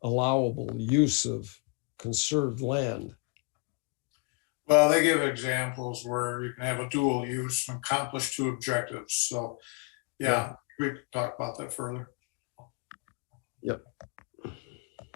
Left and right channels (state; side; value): quieter; right; 31.0 dB